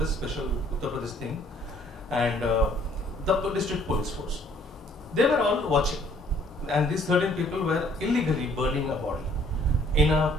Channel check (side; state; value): both; normal; correlation 0.60